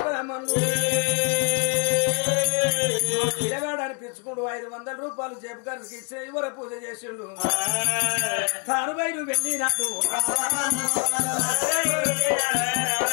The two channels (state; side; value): quieter; right; 36.9 dB